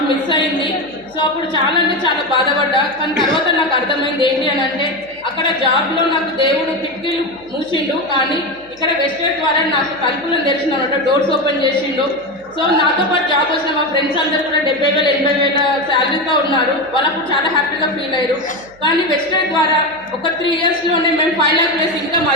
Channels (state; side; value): noise; right; hum, 27 dB below the sound